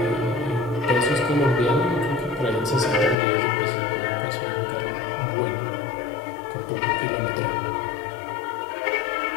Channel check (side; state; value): right; drops out; at 3.2 s